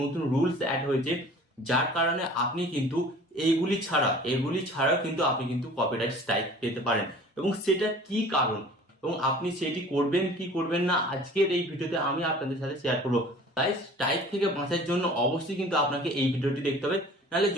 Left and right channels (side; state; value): both; normal; correlation 0.46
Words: রুলস অ্যাড হয়েছে, যার কারণে আপনি কিন্তু এগুলি ছাড়াও কিন্তু আপনি কিন্তু কপিরাইট স্ট্রাইক পেতে পারেন। এবং সেটা কি কারণ এবং আপনি সেটি করবেন কি করবেন না আজকের এই ভিডিওতে আমি আপনাদের সাথে শেয়ার করবো। তাই স্ট্রাইক থেকে বাঁচার জন্য অবশ্যই কিন্তু আপনাকে এই ভিডিওটি দেখতে হবে, নাহলে